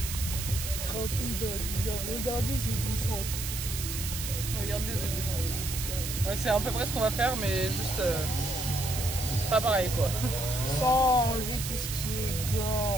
Trempé dans l'hiver. Regardez ce descente. Regardez ce descente. Ouais, c'est à peu près ce qu'on va faire, mais juste pas pareil quoi. Sans enlever tout ce qui est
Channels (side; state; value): right; noise; hiss, 5 dB below the sound